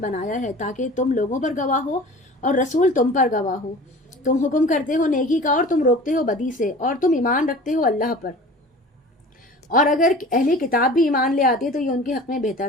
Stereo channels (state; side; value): normal; both; correlation 0.41